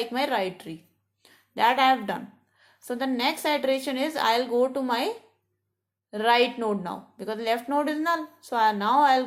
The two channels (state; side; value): identical; both; correlation 1.00